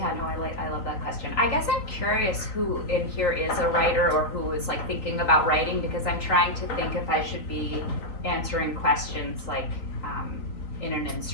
no, I love that question. I guess I'm curious who in here is a writer or who is like thinking about writing, because I'm trying to think if I should be answering questions like in an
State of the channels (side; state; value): right; late; 4.0 ms